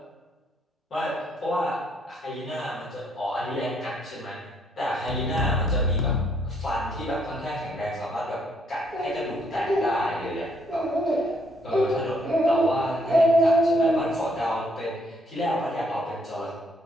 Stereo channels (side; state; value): both; normal; correlation 0.70